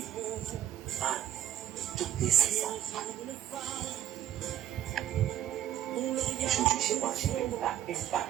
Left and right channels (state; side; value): quieter; left; 11.9 dB